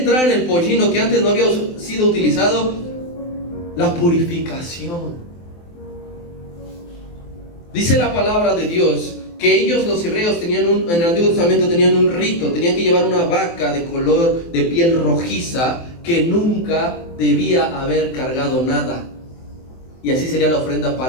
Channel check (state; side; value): late; right; 23 ms